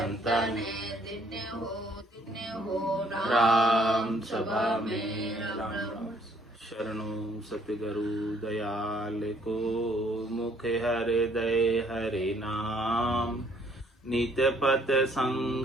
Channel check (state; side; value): normal; both; correlation 0.64